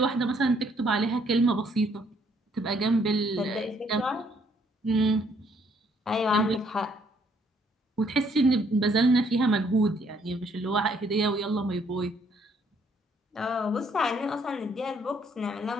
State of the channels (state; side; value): normal; both; correlation 0.67